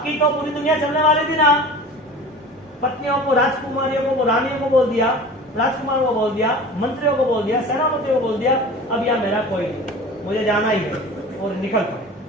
तो पूरी दुनिया चलने वाली थी ना। पत्नियों को, राजकुमारियों को, रानियों को बोल दिया, राजकुमार को बोल दिया, मंत्रियों को बोल दिया, सेनापतियों को बोल दिया, अब यहाँ मेरा कोई नहीं, मुझे जाना ही है, और निकल पड़े,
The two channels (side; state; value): both; normal; correlation 0.38